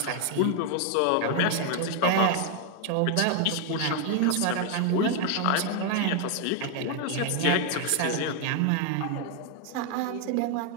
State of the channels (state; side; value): different; both; correlation 0.01